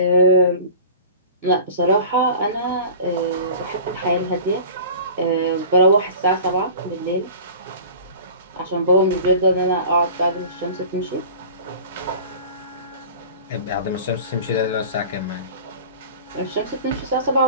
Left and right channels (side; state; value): both; inverted; correlation -0.40